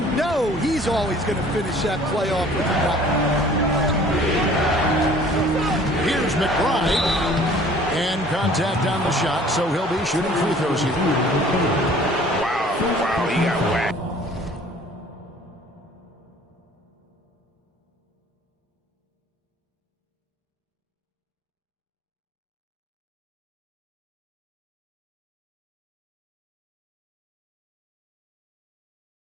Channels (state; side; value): normal; both; correlation 0.51